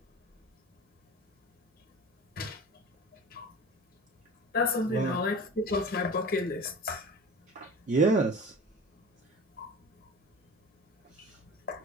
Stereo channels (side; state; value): both; normal; correlation 0.37